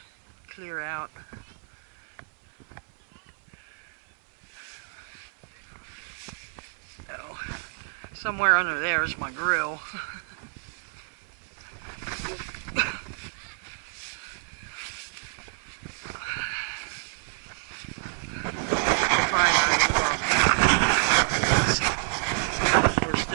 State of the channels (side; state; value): left; silent; 59 dB below the other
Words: clear out. Oh, somewhere under there is my grill. We're